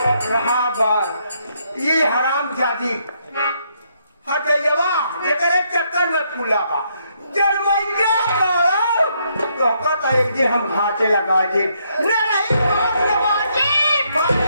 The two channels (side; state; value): both; inverted; correlation -0.74